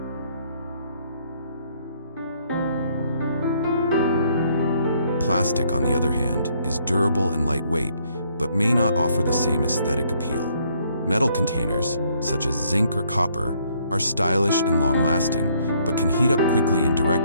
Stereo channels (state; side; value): inverted; both; correlation -0.67